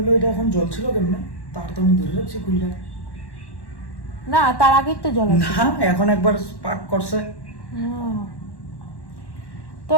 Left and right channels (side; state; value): right; late; 1.1 ms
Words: এটা এখন জল ছিল কেমনে, তার তো আমি ধরে রাখছি খুললা না, তার আগেই তো জল আছে। না, এখন একবার স্পার্ক করছে। তো